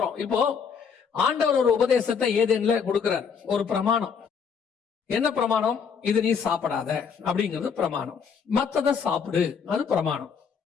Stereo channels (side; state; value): right; quieter; 6.4 dB